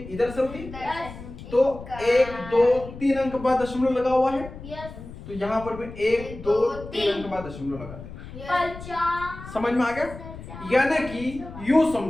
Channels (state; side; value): noise; left; rumble, 13 dB below the sound